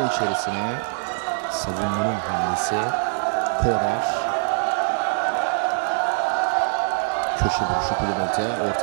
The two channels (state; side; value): silent; left; digital silence